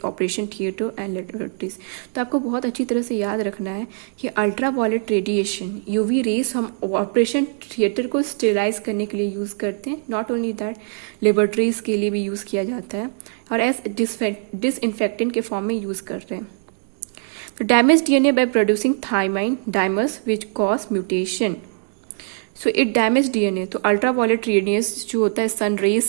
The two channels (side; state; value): left; silent; 63 dB below the other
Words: operation theatre and laboratories. तो आपको बहुत अच्छी तरह से याद रखना है कि अल्ट्रावायलेट रेडिएशन यूवी रेस हम ऑपरेशन थिएटर को स्टेरिलाइज करने के लिए यूज करते हैं. नॉट ओनली दैट, लेबोरेटरीज के लिए भी यूज किया जाता है और एज डिसइंफेक्टेंट के फॉर्म में यूज कर रहे हैं. तो damage DNA by producing thymine dimers which cause mutation. So it damage DNA. तो अल्ट्रावायलेट रेडियस जो होता है, सन